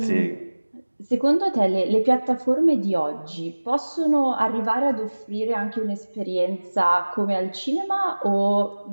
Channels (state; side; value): inverted; both; correlation -1.00